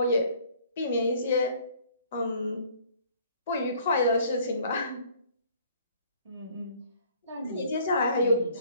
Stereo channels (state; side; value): inverted; both; correlation -0.57